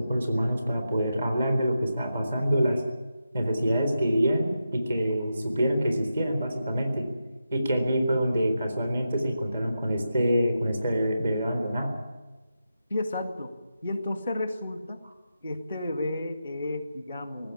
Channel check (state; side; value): inverted; both; correlation -0.88